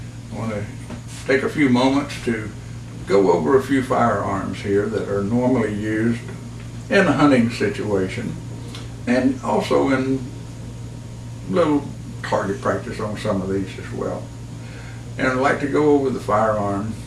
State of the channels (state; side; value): identical; both; correlation 1.00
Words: I want to take a few moments to go over a few firearms here that are normally used in a hunting situation and also in little target practice on some of these as well. And I'd like to go over the firearm,